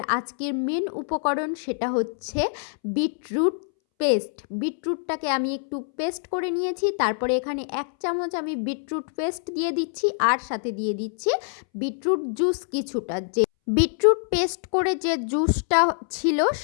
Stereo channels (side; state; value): right; silent; 62 dB below the other